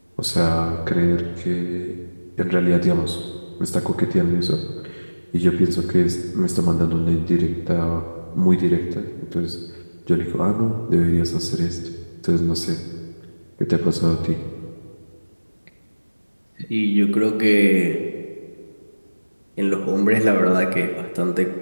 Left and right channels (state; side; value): inverted; both; correlation -1.00